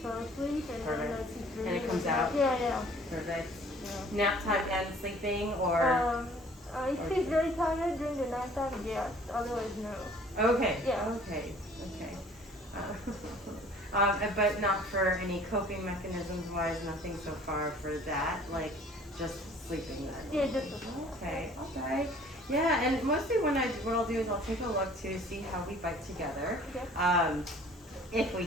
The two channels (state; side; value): normal; both; correlation 0.53